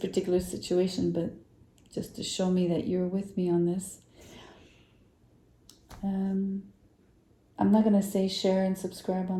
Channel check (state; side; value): identical; both; correlation 1.00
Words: situation, but just to show me that you're with me on this. I'm not going to say share and subscribe